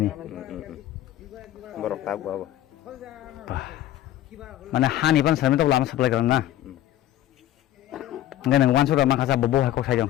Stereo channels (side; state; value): right; quieter; 13.1 dB